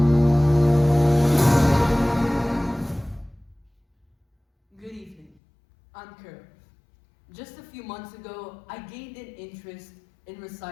Good evening. I'm Karav. Just a few months ago, I gained an interest in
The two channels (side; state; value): right; drops out; at 5.4 s